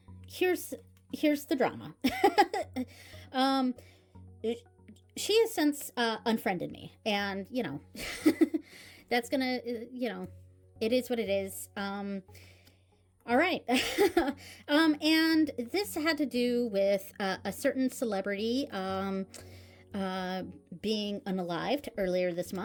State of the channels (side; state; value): both; identical; correlation 1.00